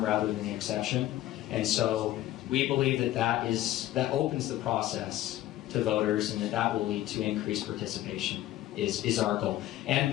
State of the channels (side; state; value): right; quieter; 14.4 dB